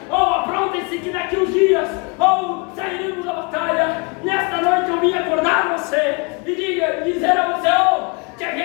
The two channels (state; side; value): quieter; right; 31.8 dB